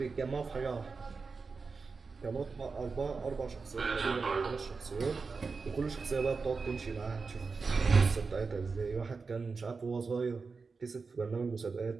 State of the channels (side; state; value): left; quieter; 4.6 dB